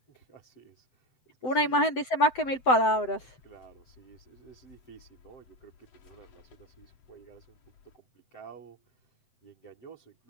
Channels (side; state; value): right; late; 7.8 ms